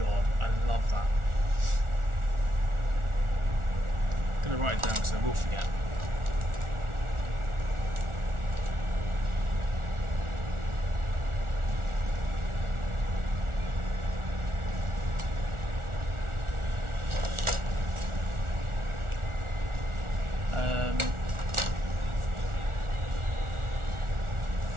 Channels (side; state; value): left; late; 1.4 ms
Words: I love that. I'm gonna write it down because I will forget.